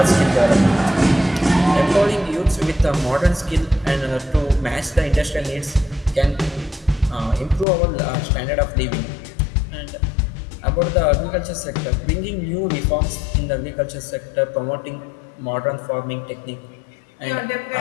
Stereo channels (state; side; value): drops out; right; at 7.7 s